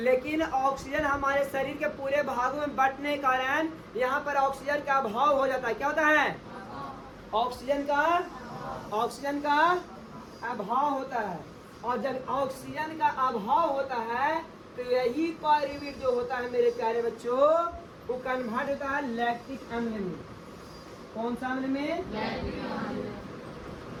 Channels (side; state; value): both; identical; correlation 1.00